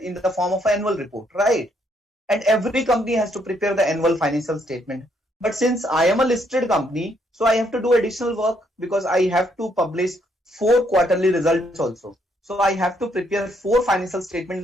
the form of an annual report, right? And every company has to prepare the annual financial statement. But since I am a listed company, so I have to do additional work because I have to publish 4 quarterly results also. So I have to prepare 4 financial statements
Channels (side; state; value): both; normal; correlation 0.71